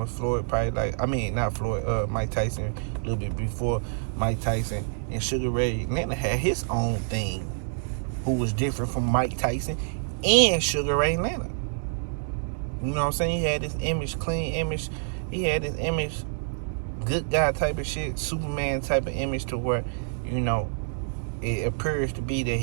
of Floyd, probably like, I mean, not Floyd, Mike Tyson, a little bit before Mike Tyson. And Sugar Ray Leonard had his own thing, who was different from Mike Tyson and Sugar Ray Leonard. You know what I'm saying? He had this image, clean image. He had this image, good guy type of shit, Superman type of image, to where, you know, it appears to be that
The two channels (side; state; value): left; silent; digital silence